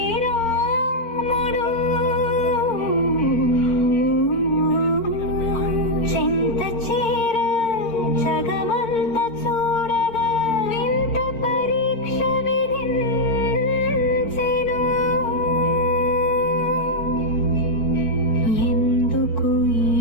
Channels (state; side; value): late; right; 4.4 ms